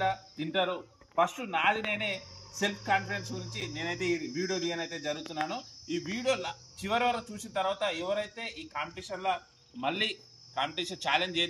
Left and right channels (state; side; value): identical; both; correlation 1.00